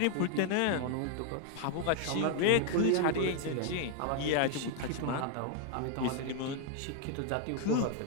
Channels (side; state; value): both; different; correlation 0.01